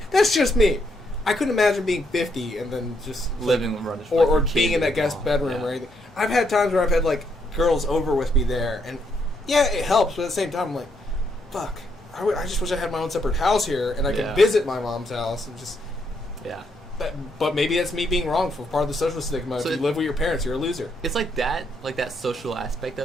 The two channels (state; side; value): normal; both; correlation 0.76